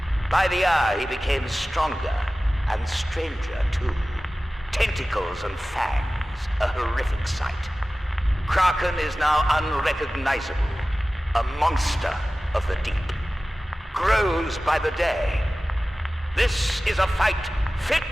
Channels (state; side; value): normal; both; correlation 0.96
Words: By the hour, he became stronger and stranger, too. Tentacles and fangs, a horrific sight. Kraken is now unrecognizable, a monster of the deep. Grows by the day. This is a fight